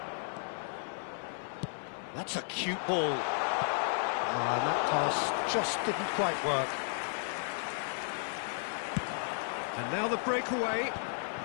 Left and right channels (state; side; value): silent; right; 55 dB below the other